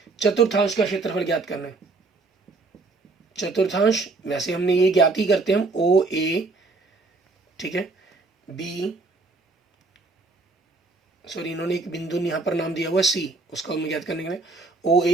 चतुर्थांश का क्षेत्रफल ज्ञात करना है। चतुर्थांश वैसे हमने ये ज्ञात ही करते हैं हम, ओ ए, ठीक है, बी, सॉरी इन्होंने एक बिंदु यहाँ पर नाम दिया हुआ सी, उसका हम ज्ञात करने के लिए ओ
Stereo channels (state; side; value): quieter; left; 3.6 dB